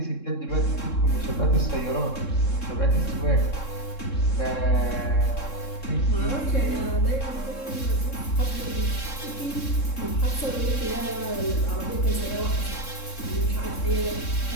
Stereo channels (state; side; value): late; right; 3.7 ms